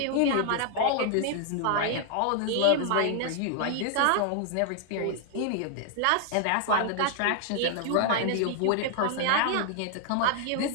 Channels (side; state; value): both; different; correlation 0.00